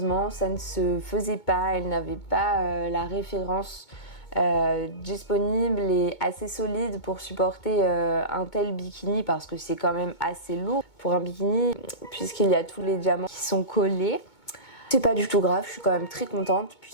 ça ne se faisait pas, elle n'avait pas la référence disponible et assez solide pour supporter un tel bikini parce que c'est quand même assez lourd pour un bikini puisqu'il y a tous les diamants qui sont collés. C'est pas du tout grave, je suis quand même très contente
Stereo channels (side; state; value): right; late; 2.2 ms